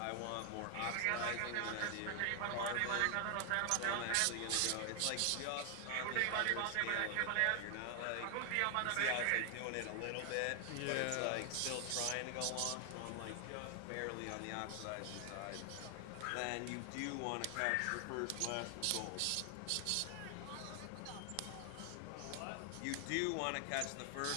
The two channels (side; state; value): both; different; correlation 0.00